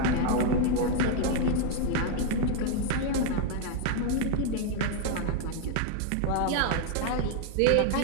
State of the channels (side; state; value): both; different; correlation 0.00